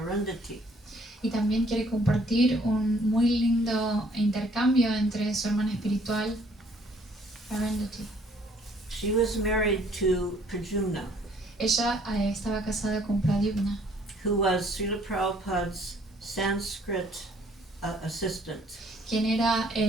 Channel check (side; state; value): both; normal; correlation 0.61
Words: Y también quiere compartir un muy lindo intercambio entre su hermana espiritual, Arundhati. She was married to Pradyumna, Ella estaba casada con Pradyumna, who was Srila Prabhupada's Sanskrit assistant. quien era